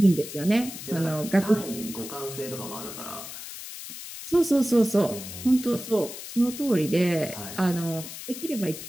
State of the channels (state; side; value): noise; left; hiss, 11 dB below the sound